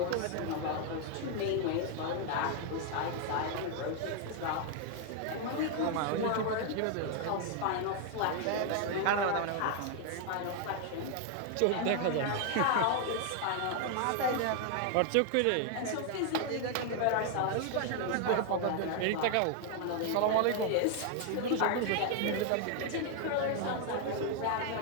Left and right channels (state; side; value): different; both; correlation 0.00